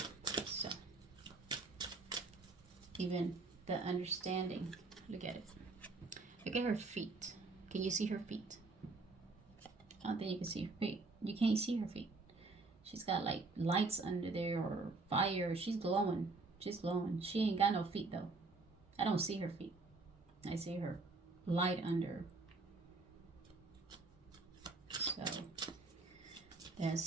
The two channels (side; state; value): left; quieter; 3.7 dB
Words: so even the understanding. Look at it. Look at her feet. Can you see her feet? I don't think you can see her feet. You can't see her feet. She's got like lights under there or fire. She's glowing. She's glowing. She ain't got no feet though. I don't see her feet. I see her light under. So